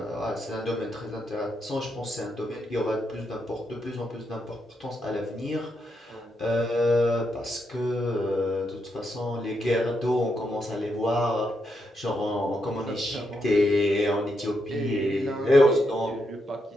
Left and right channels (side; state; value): both; normal; correlation 0.81